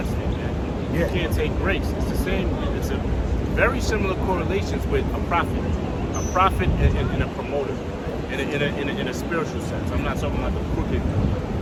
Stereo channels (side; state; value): both; identical; correlation 1.00